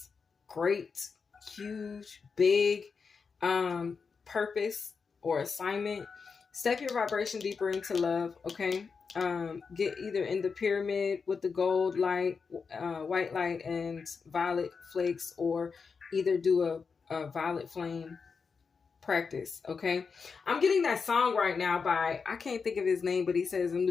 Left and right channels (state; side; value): quieter; right; 5.3 dB